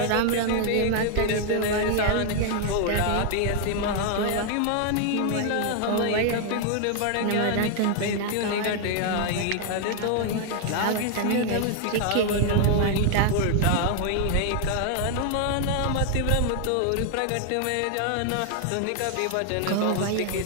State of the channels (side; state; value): both; different; correlation 0.00